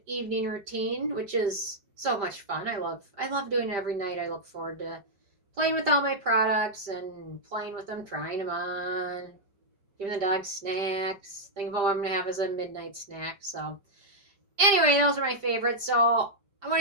evening routine, which is so much fun. I love doing it every night. I look forward to playing with all my products and playing with them, trying them on, giving the dog snacks, thinking about what I'm going to have as a midnight snack. So anyway, those are my favorites. So I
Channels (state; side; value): late; left; 5.0 ms